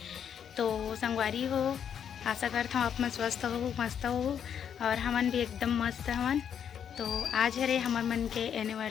तो संगवारी हो, आशा करता हूँ आप मन स्वस्थ हो, मस्त हो और हमन भी एकदम मस्त हवन। तो आज है रे हमर मन के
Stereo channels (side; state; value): right; quieter; 8.4 dB